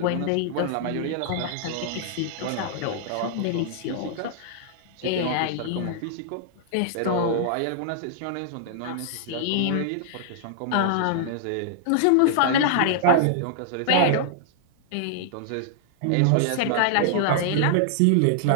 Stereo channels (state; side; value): different; both; correlation -0.01